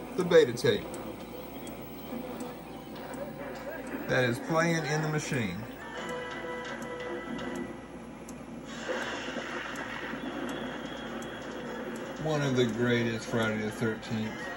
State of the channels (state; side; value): identical; both; correlation 1.00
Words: the beta tape that is playing in the machine. one of the greatest Friday the 13th